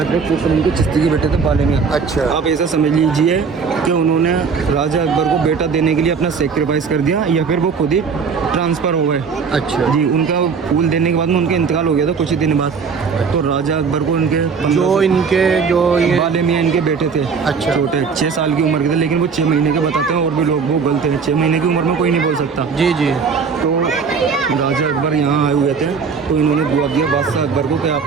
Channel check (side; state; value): left; quieter; 5.6 dB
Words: शेख सलीम के चिश्ती के बेटे थे बाले मियाँ। अच्छा। आप ऐसा समझ लीजिए कि उन्होंने राजा अकबर को बेटा देने के लिए अपना सेक्रीफाइस कर दिया, या फिर वो खुद ही ट्रांसफ़र हो गए। अच्छा जी, उनका फूल देने के बाद में उनका इंतकाल हो गया था कुछ ही दिन बाद। तो राजा अकबर को उनके जो ये बाले मियाँ इनके बेटे थे, अच्छा। छोटे 6 साल की उम्र के थे, लेकिन वो 6 महीने के बताते हैं, और भी लोग वो गलत हैं, 6 महीने की उम्र में कोई नहीं बोल सकता। जी जी। तो राजा अकबर यहाँ आए हुए थे, तो इन्होंने दुआ दिया बादशाह अकबर को कि